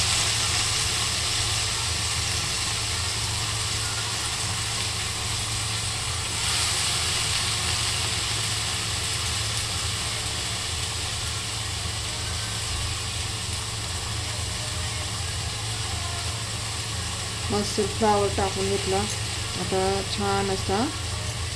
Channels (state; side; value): identical; both; correlation 1.00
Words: मस्त फ्लावर टाकून घेतला. आता छान असा